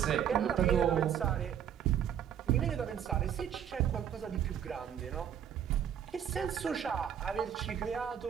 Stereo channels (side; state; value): left; quieter; 9.2 dB